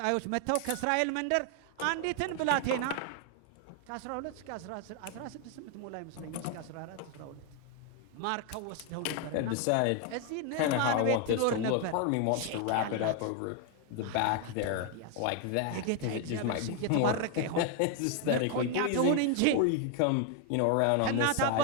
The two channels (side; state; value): both; different; correlation 0.01